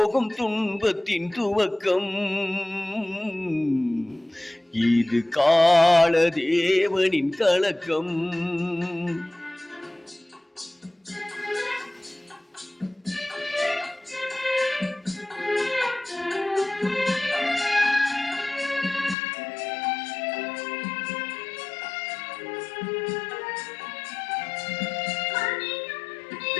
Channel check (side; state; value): right; drops out; at 19.2 s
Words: துன்பத்தின் துவக்கம். இது காலதேவனின் கலக்கம்.